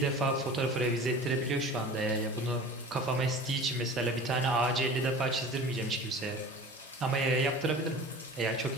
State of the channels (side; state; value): both; normal; correlation 0.39